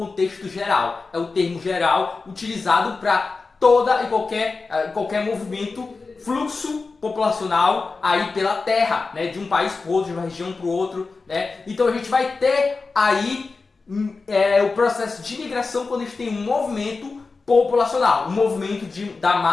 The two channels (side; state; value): right; quieter; 4.1 dB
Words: geral, é o termo geral utilizado para toda e qualquer movimento, fluxo populacional aí pela terra, né, de um país para o outro, de uma região para o outro, né? Então a gente vai ter aí o processo de migração quando a gente tem um movimento populacional, um movimento da